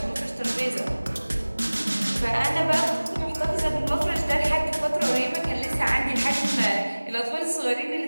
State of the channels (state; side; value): inverted; both; correlation -1.00